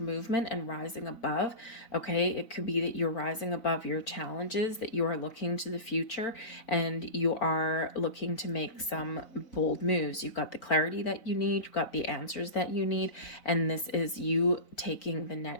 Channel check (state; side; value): late; right; 4.0 ms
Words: movement and rising above. Okay, it could be that you're rising above your challenges, that you are looking to the future, and you are looking to make some bold moves. You've got the clarity that you need, you've got the answers that you need, and this is you taking the